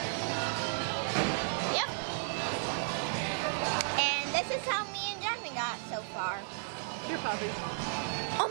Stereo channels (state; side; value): silent; left; digital silence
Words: Yep. And this is how me and Jasmine got so far. Here, Poppy.